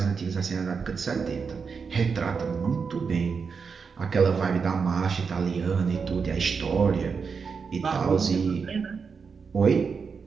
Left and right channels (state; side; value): quieter; left; 5.6 dB